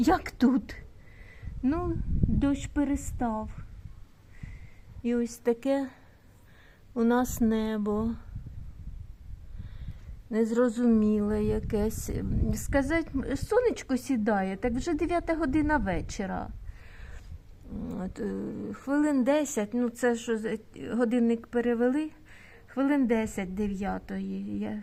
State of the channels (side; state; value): both; identical; correlation 1.00